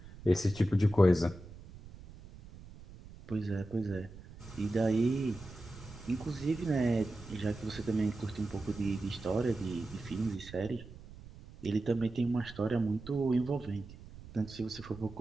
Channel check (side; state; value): right; noise; rumble, 17 dB below the sound